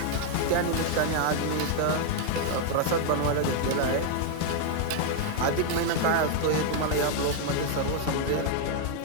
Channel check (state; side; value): different; both; correlation 0.00